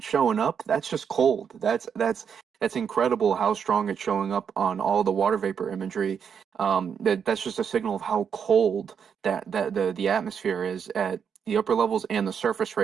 showing up? That's just cold. That's incredible how strong it's showing up on all the water vapor imagery. That's just a signal of how cold that the atmosphere is at the upper levels and the surface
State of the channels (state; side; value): quieter; left; 7.2 dB